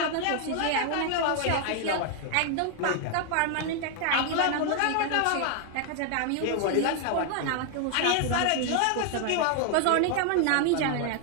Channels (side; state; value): both; different; correlation 0.00